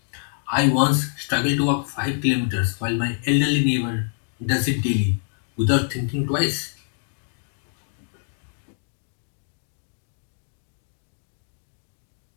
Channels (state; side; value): silent; right; digital silence